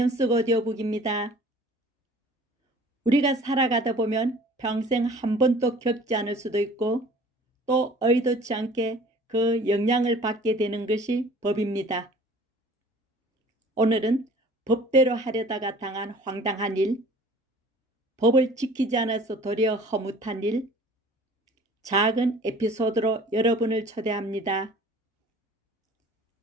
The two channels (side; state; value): both; normal; correlation 0.49